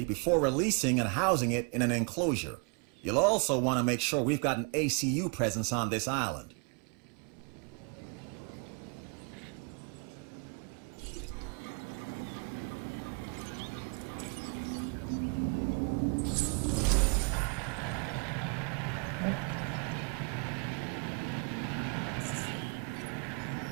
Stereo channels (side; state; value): left; quieter; 35.3 dB